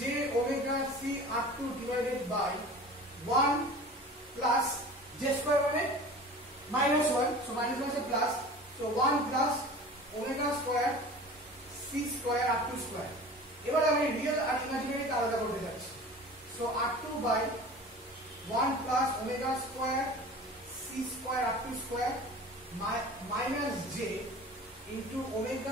omega C R2 divided by 1 plus j square মানে minus 1, so minus 1 is a plus, so 1 plus omega square C square R2 square, এবার আমি real আর imaginary কে আলাদা করতে যাচ্ছি। So r2 by 1 plus omega square c square r2 square minus j into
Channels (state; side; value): normal; both; correlation 0.39